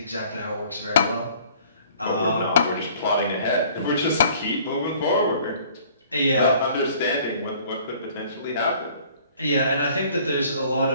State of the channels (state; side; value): inverted; both; correlation -0.54